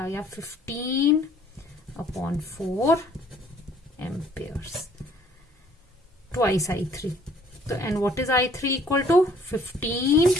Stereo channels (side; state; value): both; normal; correlation 0.59